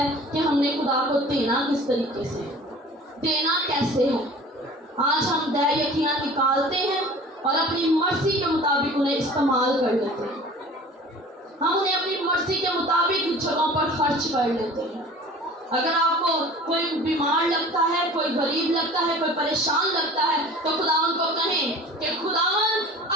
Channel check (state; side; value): normal; both; correlation 0.44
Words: कि हमने खुदा को देना किस तरीके से, देना कैसे है। आज हम दय यकीना निकालते हैं और अपनी मर्जी के मुताबिक उन्हें इस्तेमाल कर लेते हैं। हम उन्हें अपनी मर्जी के मुताबिक जगहों पर खर्च कर लेते हैं। अगर आपको कोई बीमार लगता है, कोई गरीब लगता है, कोई परेशान लगता है, तो खुदावन को कहें कि खुदावन